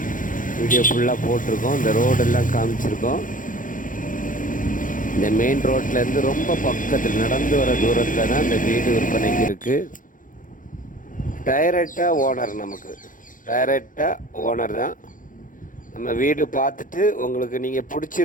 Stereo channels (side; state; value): right; late; 0.39 ms